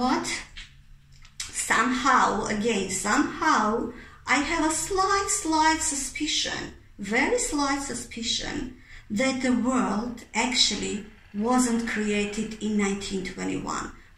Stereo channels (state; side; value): identical; both; correlation 1.00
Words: Somehow, I have a slight suspicion, very slight suspicion, that the world actually wasn't created in 1921,